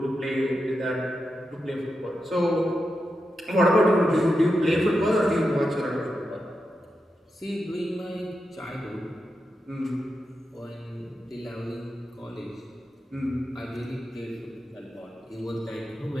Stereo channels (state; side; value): normal; both; correlation 0.88